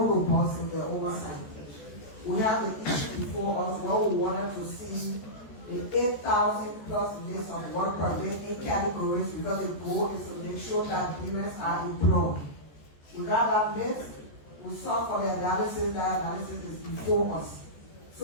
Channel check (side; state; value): right; late; 14 ms